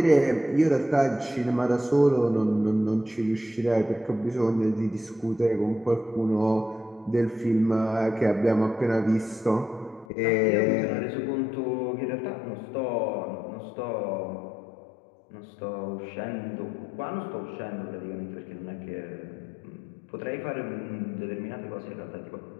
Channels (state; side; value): drops out; right; at 10.1 s